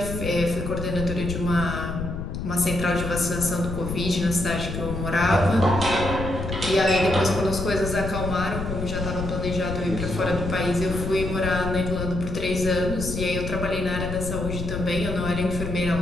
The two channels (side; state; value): left; noise; rumble, 5 dB below the sound